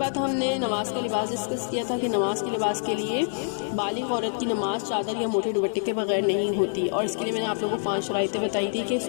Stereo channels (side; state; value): right; silent; digital silence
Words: ہم نے نماز کا لباس ڈسکس کیا تھا کہ نماز کے لباس کے لیے بالغ عورت کی نماز چادر یا موٹے دوپٹے کے بغیر نہیں ہوتی، اور اس کے لیے میں نے آپ لوگوں کو 5 شرائطیں بتائی تھی کہ